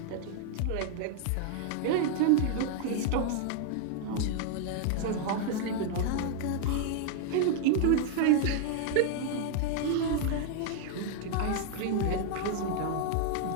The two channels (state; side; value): different; both; correlation 0.00